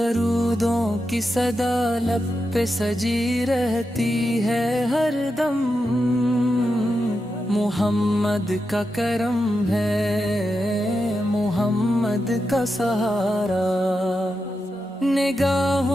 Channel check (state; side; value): normal; both; correlation 0.88